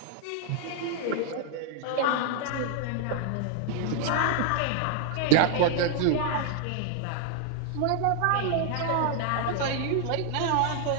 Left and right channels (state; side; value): different; both; correlation 0.00